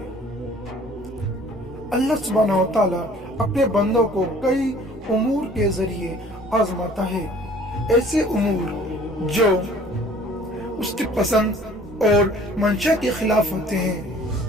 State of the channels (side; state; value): both; normal; correlation 0.52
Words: اللہ سبحانہ و تعالیٰ اپنے بندوں کو کئی امور کے ذریعے آزماتا ہے، ایسے امور جو اس کی پسند اور منشا کے خلاف ہوتے ہیں،